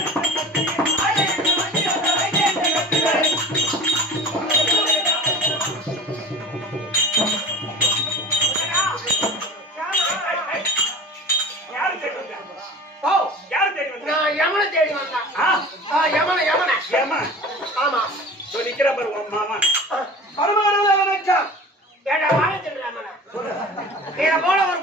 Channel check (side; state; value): both; normal; correlation 0.37